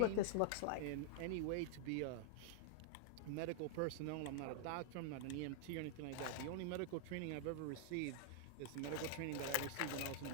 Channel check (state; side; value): different; both; correlation -0.01